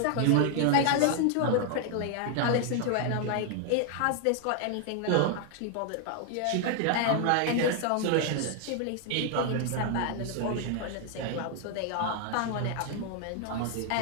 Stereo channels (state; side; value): different; both; correlation 0.00